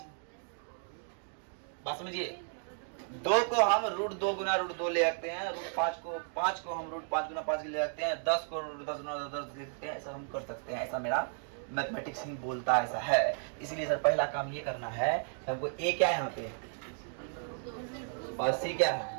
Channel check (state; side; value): silent; left; 55 dB below the other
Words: बात समझिए, 2 को हम √2 गुना √2 ले सकते हैं, √5 को 5 को हम √5 गुना 5 ले सकते हैं, 10 को √10 गुना 10 ले सकते हैं। ऐसा हम कर सकते हैं, ऐसा मेरा मैथमेटिक्स ही बोलता है, ऐसा है। इसलिए सर पहला काम ये करना है, हमको ए क्या है यहाँ पे और सी क्या